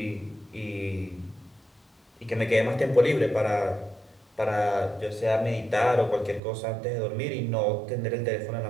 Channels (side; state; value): left; drops out; at 6.4 s